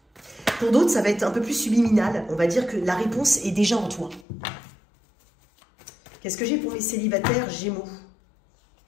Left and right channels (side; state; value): right; drops out; at 4.2 s